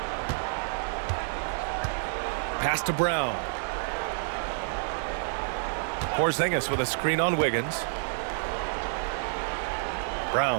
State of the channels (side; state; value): left; silent; digital silence